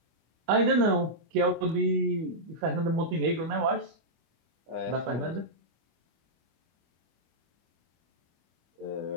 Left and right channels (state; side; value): late; left; 25 ms